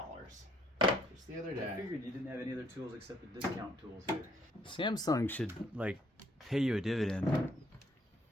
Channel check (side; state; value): both; normal; correlation 0.67